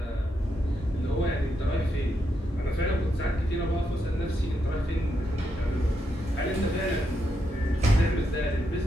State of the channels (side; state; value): both; normal; correlation 0.82